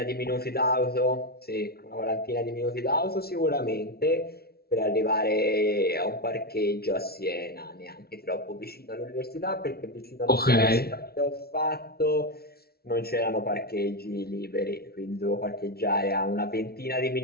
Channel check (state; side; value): late; right; 0.45 ms